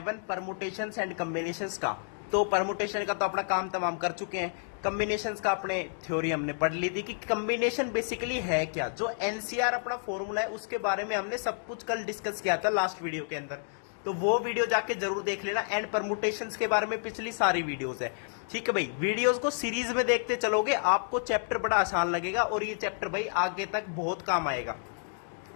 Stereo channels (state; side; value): silent; right; digital silence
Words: permutations and combinations का। तो परमुटेशन का तो अपना काम तमाम कर चुके हैं। कॉम्बिनेशंस का अपने थ्योरी हमने पढ़ ली थी कि कॉम्बिनेशन बेसिकली है क्या। जो एनसीआर अपना फॉर्मूला है उसके बारे में हमने सब कुछ कल डिस्कस किया था लास्ट वीडियो के अंदर, तो वो वीडियो जाके जरूर देख लेना। एंड परमुटेशंस के बारे में पिछली सारी वीडियोस है, ठीक है भाई। वीडियोस को सीरीज में देखते चलोगे आपको चैप्टर बड़ा आसान लगेगा और ये चैप्टर भाई आगे तक बहुत काम आएगा।